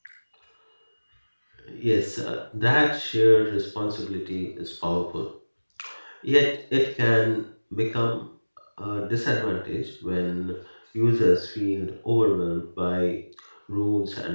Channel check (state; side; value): inverted; both; correlation -1.00